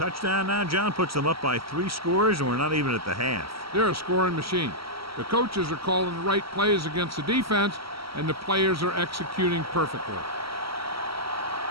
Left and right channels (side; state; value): left; late; 0.75 ms